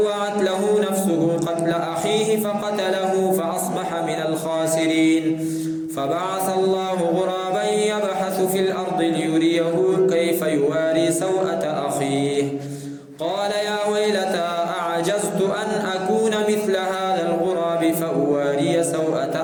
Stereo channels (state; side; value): identical; both; correlation 1.00